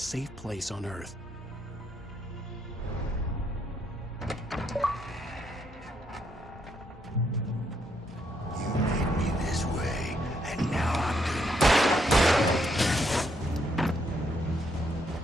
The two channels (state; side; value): normal; both; correlation 0.75